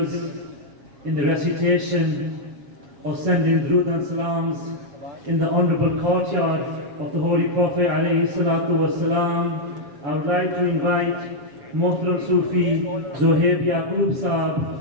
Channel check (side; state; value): left; late; 7.3 ms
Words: in the recitation of sending Durood and Salams in the honourable courtyard of the Holy Prophet alayhi salatu wasalam, I would like to invite Muhtaram Sufi Zohaib Yaqub